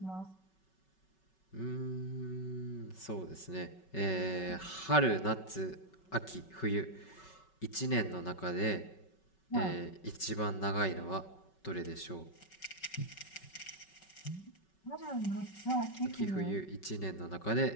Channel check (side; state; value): right; late; 5.3 ms